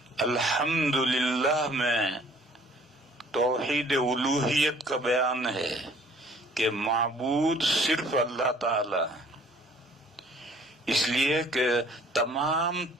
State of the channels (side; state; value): both; normal; correlation 0.56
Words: الحمدللہ میں توحید الوہیت کا بیان ہے کہ معبود صرف اللہ تعالی ہے، اس لیے کہ تمام